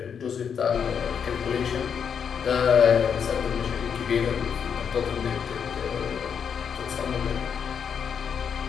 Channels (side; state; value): right; quieter; 7.2 dB